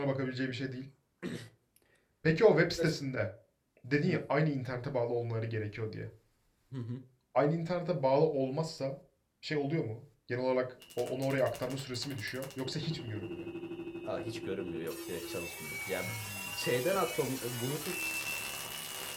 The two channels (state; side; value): identical; both; correlation 1.00